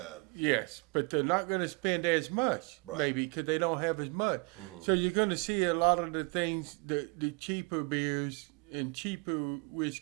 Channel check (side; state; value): left; quieter; 31.9 dB